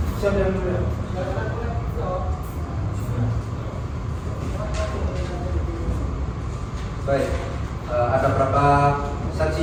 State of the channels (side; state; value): both; identical; correlation 1.00